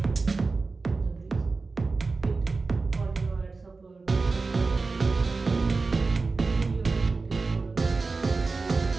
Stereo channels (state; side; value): quieter; left; 4.0 dB